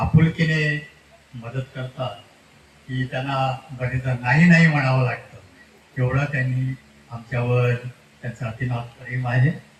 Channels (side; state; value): both; identical; correlation 1.00